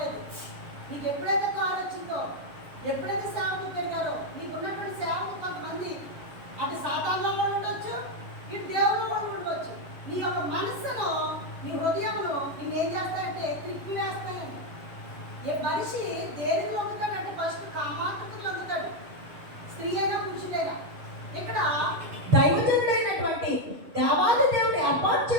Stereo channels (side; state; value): left; late; 7.1 ms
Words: నీకు ఎప్పుడైతే కాల్ వచ్చిందో, ఎప్పుడైతే సేవకులు పెరిగారో, నీకు ఉన్నటువంటి సేవకు కొంతమంది అది సాతానులో వాళ్ళు ఉండొచ్చు, ఇటు దేవుల్లో వాళ్ళు ఉండవచ్చు. నీ యొక్క మనస్సును, నీ హృదయమును నేనేం చేస్తానంటే తిప్పి వేస్తానండి. మనిషి దేనికి లొంగుతాడంటే ఫస్ట్ కామాతృతకు లొంగుతాడు, స్త్రీ అయినా పురుషుడైనా. ఇక్కడ దైవజనుడైనటువంటి దేవాది దేవుడు ఏర్పాటు